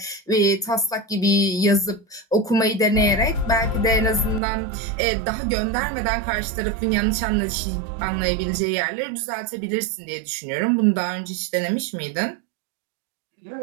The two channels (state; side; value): drops out; left; at 4.4 s